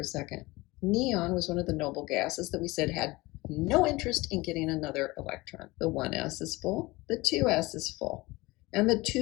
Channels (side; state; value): right; quieter; 21.6 dB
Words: second. Neon was one of the noble gases that we said had no interest in getting another electron. The 1s is full, the 2s is full, and the